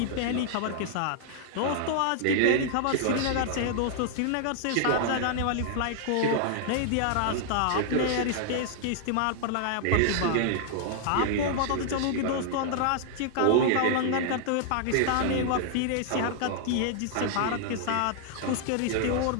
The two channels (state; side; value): different; both; correlation -0.01